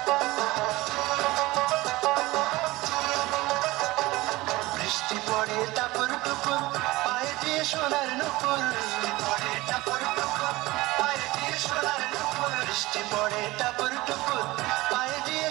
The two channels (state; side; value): quieter; left; 19.9 dB